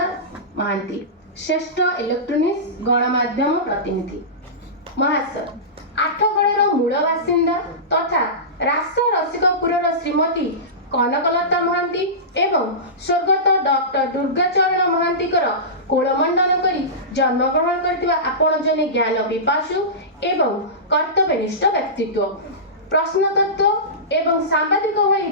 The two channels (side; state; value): both; normal; correlation -0.20